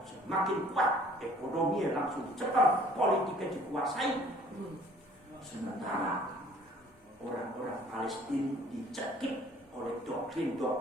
semakin kuat, ekonominya langsung dicekal, politiknya dikuasai. Sementara orang-orang Palestina dicekik oleh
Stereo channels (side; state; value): both; normal; correlation 0.55